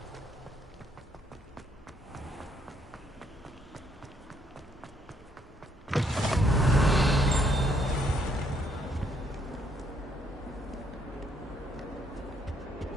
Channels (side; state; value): both; normal; correlation 0.70